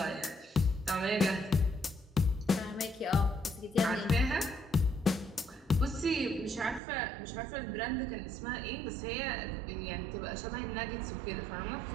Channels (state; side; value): drops out; left; at 6.8 s